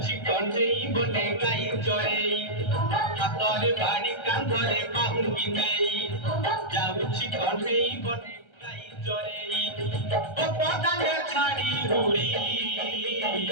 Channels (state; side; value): late; right; 1.3 ms